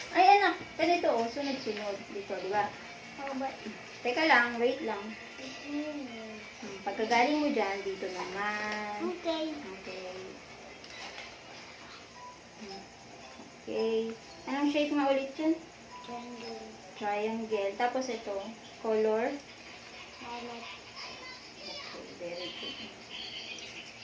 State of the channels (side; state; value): both; identical; correlation 1.00